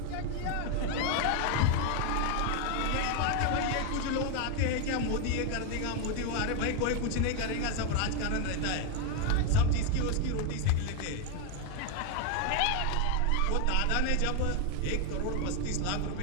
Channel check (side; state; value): both; different; correlation 0.01